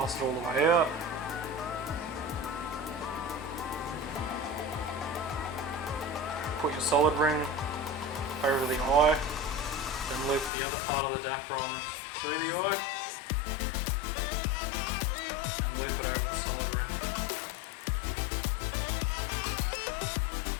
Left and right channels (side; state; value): right; drops out; at 10.5 s